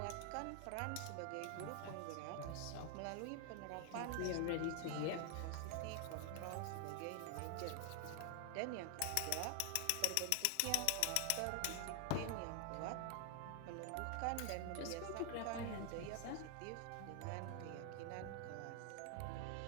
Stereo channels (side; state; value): both; different; correlation 0.00